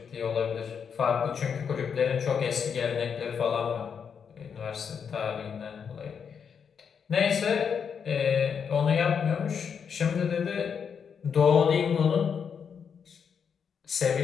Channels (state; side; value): quieter; right; 6.9 dB